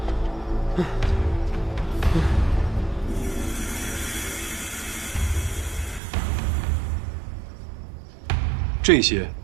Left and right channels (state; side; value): drops out; left; at 6.0 s